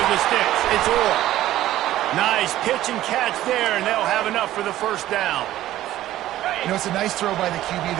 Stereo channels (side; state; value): left; quieter; 14.1 dB